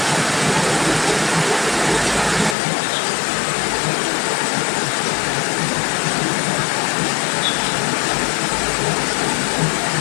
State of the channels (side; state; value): right; drops out; at 2.6 s